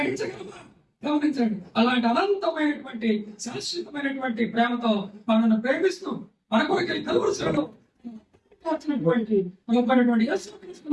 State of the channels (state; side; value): identical; both; correlation 1.00